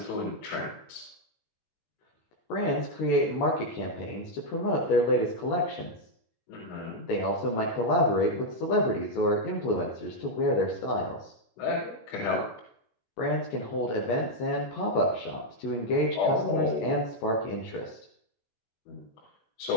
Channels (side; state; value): right; late; 18 ms